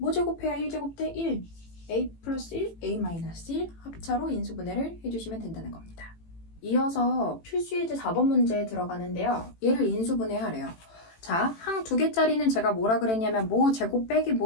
제곱해야 1제곱 대 1 a 플러스 1 a 마이너스 1 합차로 인수분해를 해주시면 된다는 겁니다. 이어서 필수예제 4번 문제에 들어가는데요. 얘를 인수분해하래요. 자, 항 2개짜리는 제가 뭐라 그랬냐면 뭐 제곱 빼기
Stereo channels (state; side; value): late; right; 18 ms